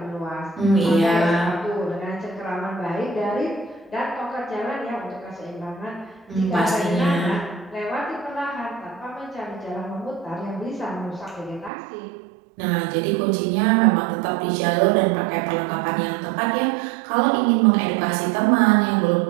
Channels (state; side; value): drops out; left; at 11.7 s